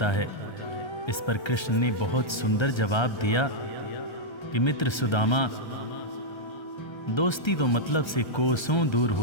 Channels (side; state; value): right; late; 1.3 ms